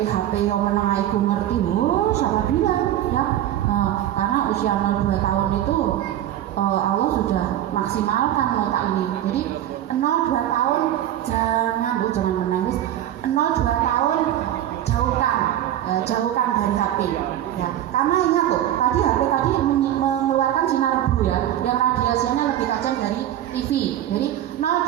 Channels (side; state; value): left; quieter; 12.0 dB